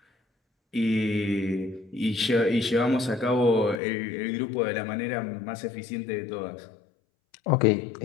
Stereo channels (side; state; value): right; drops out; at 3.8 s